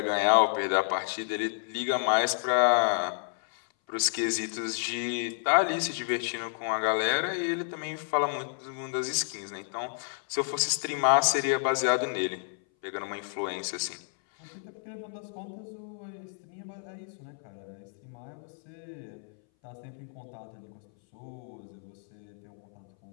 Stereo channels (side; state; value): right; silent; 57 dB below the other